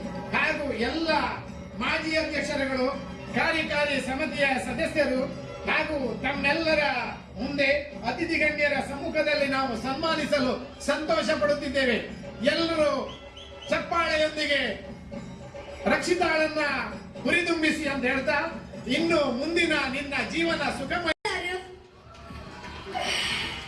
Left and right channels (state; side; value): identical; both; correlation 1.00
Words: ಹಾಗೂ ಎಲ್ಲ ಮಾಜಿ ಅಧ್ಯಕ್ಷರುಗಳು, ಕಾರ್ಯಕಾರಿ ಸಮಿತಿಯ ಸದಸ್ಯರು ಹಾಗೂ ತಮ್ಮೆಲ್ಲರ ಮುಂದೆ ಅತಿಥಿ ಗಣ್ಯರ ಸಮ್ಮುಖದಲ್ಲಿ ನಾವು ಸನ್ಮಾನಿಸಲು ಸಂತೋಷ ಪಡುತ್ತಿದ್ದೇವೆ. ಎಲ್ಲರೂ ಚಪ್ಪಾಳೆಯೊಂದಿಗೆ ರಕ್ಷಿತಾಳನ್ನ ಹುರಿದುಂಬಿಸಿ ಅಂತ ಹೇಳ್ತಾ, ಇನ್ನು ಮುಂದಿನ ನಿನ್ನ ಜೀವನ ಸುಖಮಯ.